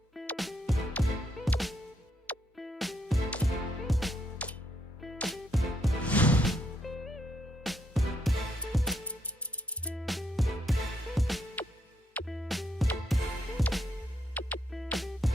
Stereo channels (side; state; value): both; normal; correlation 0.77